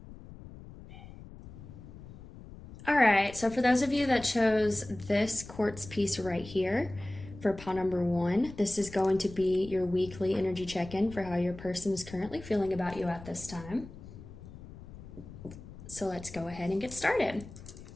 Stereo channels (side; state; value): left; noise; rumble, 16 dB below the sound